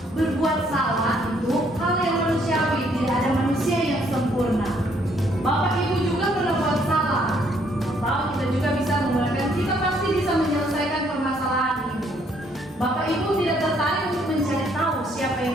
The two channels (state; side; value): normal; both; correlation 0.67